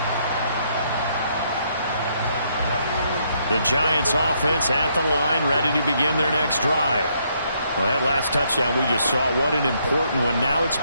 The Giants offense at the line, ready to begin their next drive. Well, that last touchdown we just saw, what an important one. Now it's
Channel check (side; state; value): both; inverted; correlation -0.72